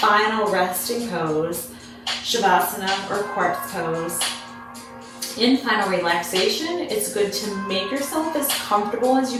resting pose, Shavasana or corpse pose. In final relaxation, it's good to make yourself as comfortable as you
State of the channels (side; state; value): both; identical; correlation 1.00